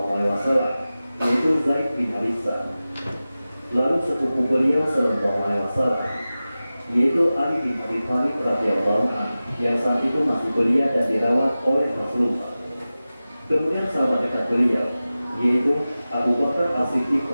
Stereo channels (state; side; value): inverted; both; correlation -0.96